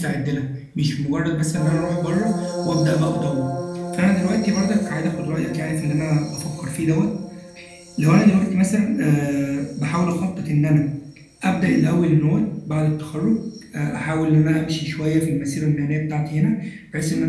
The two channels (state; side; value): identical; both; correlation 1.00